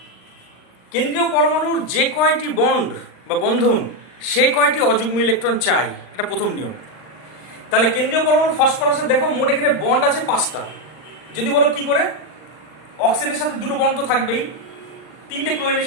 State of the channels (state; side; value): late; right; 39 ms